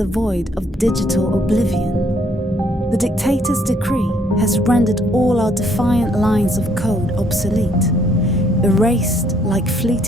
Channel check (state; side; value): normal; both; correlation 0.67